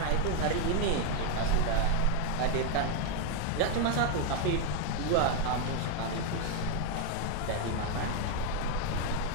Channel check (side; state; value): both; different; correlation 0.01